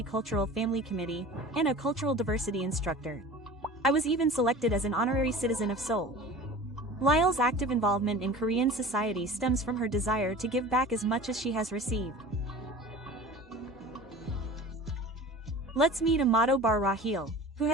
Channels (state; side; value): normal; both; correlation 0.39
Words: Family Committee, and a cultural diversity instructor. I was even selected as an honorary citizen of Seoul. Lyle's active involvement in Korean society stems from her desire to give back as much as she has received. Let's meet A마도바라힐, who